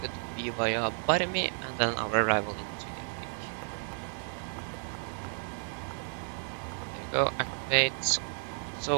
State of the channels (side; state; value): left; silent; 56 dB below the other